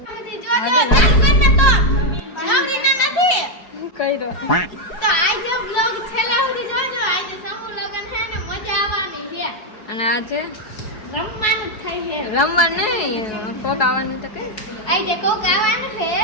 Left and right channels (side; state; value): right; late; 4.7 ms